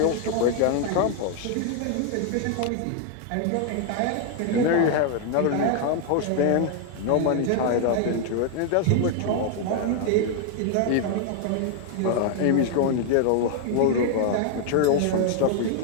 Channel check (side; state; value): both; different; correlation 0.00